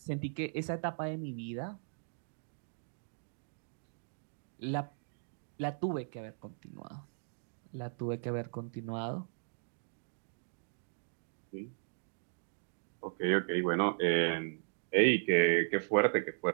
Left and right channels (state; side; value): silent; left; digital silence